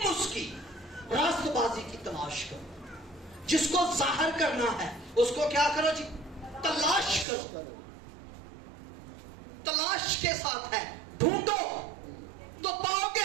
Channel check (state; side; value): drops out; left; at 7.2 s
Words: اس کی راست بازی کی تلاش کرو. جس کو ظاہر کرنا ہے اس کو کیا کرو جی؟ تلاش کرو. تلاش کے ساتھ ہے. ڈھونڈو تو پاؤ